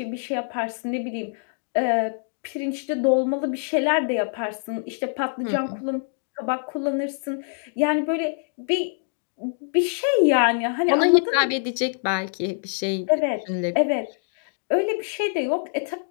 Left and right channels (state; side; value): silent; right; digital silence